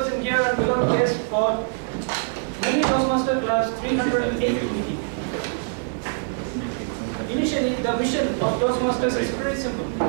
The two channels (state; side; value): silent; left; digital silence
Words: in here and below guests for Medley Toastmaster Club's 308th meeting. Initially, the mission of Toastmasters is very simple.